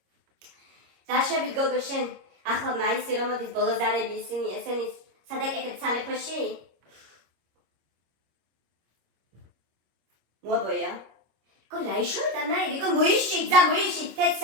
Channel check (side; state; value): left; late; 26 ms